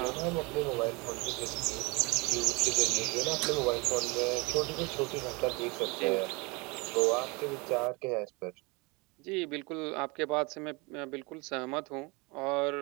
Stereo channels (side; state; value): left; quieter; 27.6 dB